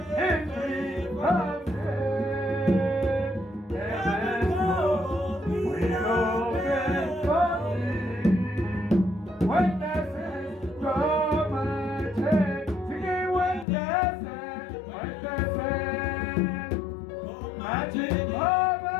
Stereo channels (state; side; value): drops out; right; at 13.7 s